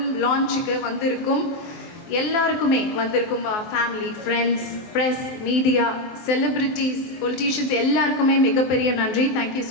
லான்ச்சுக்கு வந்திருக்கும் எல்லாருக்குமே வந்திருக்கும் family, friends, press, media, celebrities, politicians எல்லாருக்குமே மிகப்பெரிய நன்றி. Thank you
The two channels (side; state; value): right; late; 24 ms